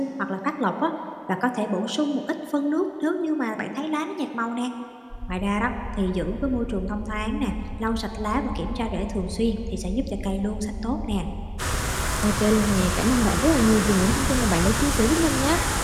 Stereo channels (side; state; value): both; identical; correlation 1.00